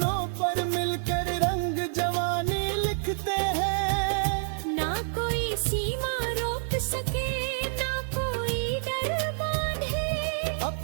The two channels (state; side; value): silent; left; 55 dB below the other